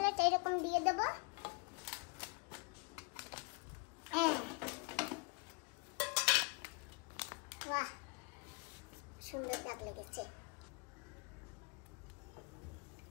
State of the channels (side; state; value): right; quieter; 31.7 dB